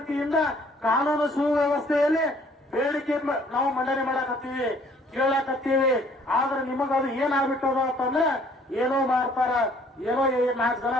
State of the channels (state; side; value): normal; both; correlation 0.59